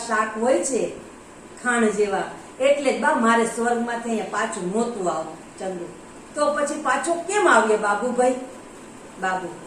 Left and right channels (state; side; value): identical; both; correlation 1.00